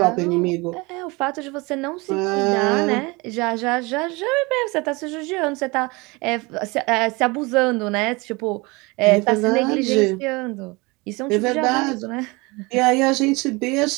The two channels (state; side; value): quieter; left; 25.4 dB